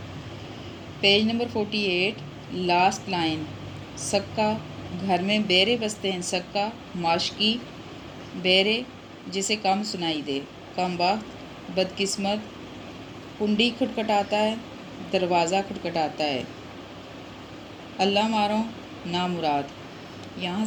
پیج نمبر 48، لاسٹ لائن، سکہ، گھر میں بیرے بستے ہیں، سکہ، معاشقی، بیرے، جسے کم سنائی دے، کم بخت، بدقسمت، کنڈی کھٹکھٹاتا ہے، دروازہ کھٹکھٹاتا ہے، اللہ مارو، نامراد۔ یہاں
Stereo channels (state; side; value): identical; both; correlation 1.00